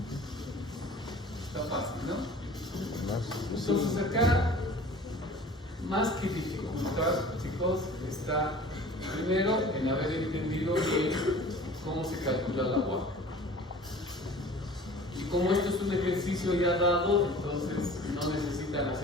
Está fácil, ¿no? Entonces acá, más que dificultad, chicos, está primero en haber entendido bien cómo se calcula la UAC. Y como esto es un ejercicio ya dado, entonces no necesitan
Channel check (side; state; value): both; normal; correlation 0.44